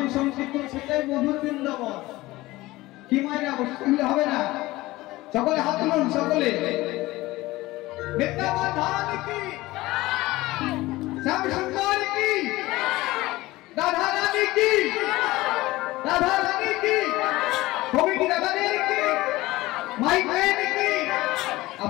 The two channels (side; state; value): right; quieter; 18.8 dB